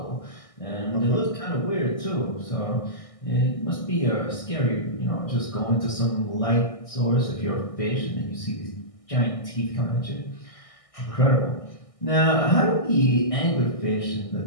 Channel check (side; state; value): right; late; 1.6 ms